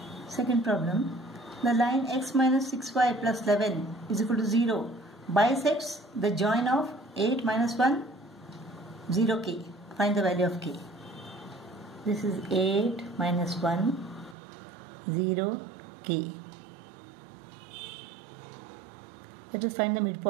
Second problem. The line x minus 6y plus 11 is equal to 0 bisects the join of 8 minus 1, 0k. Find the value of k. This is 8 minus 1, 0k. Let us find the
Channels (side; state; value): left; drops out; at 14.4 s